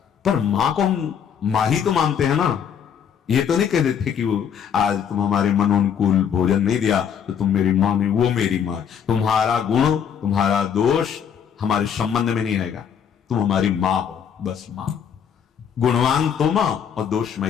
पर मां को हम मां ही तो मानते हैं ना। ये तो नहीं कह देते कि वो आज तुम हमारे मनोनुकूल भोजन नहीं दिया तो तुम मेरी मां नहीं, वो मेरी मां। तुम्हारा गुण, तुम्हारा दोष हमारे संबंध में नहीं आएगा। तुम हमारी मां हो, बस मां। गुणवान तो मां और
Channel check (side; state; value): right; quieter; 7.9 dB